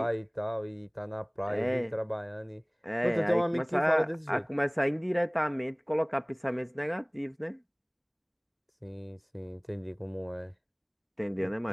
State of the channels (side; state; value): both; identical; correlation 1.00